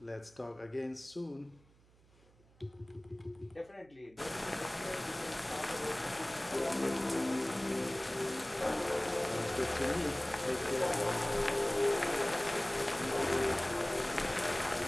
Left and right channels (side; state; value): right; noise; hum, 29 dB below the sound